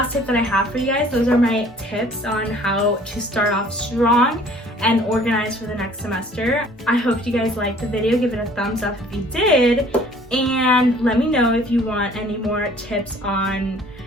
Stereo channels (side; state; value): both; normal; correlation 0.53